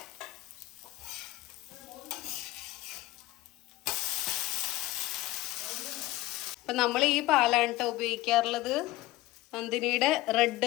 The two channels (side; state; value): right; quieter; 17.6 dB